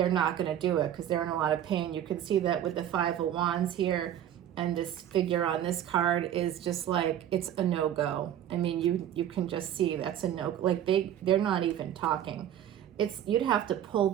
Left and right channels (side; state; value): left; quieter; 10.8 dB